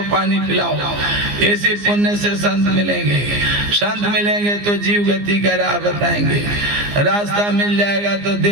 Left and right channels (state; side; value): late; left; 15 ms